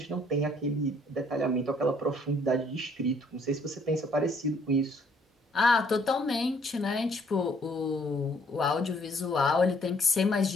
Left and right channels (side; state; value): both; normal; correlation 0.64